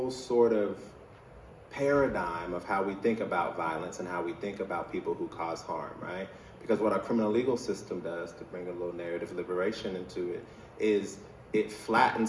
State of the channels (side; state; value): both; identical; correlation 1.00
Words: sort of paradigm of how we think about violence and how we think about people who cause harm, right? Because what our criminal legal system does, to bring a little narrative liberation into it, is it